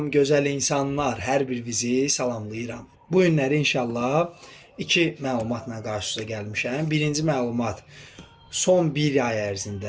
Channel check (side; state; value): both; identical; correlation 1.00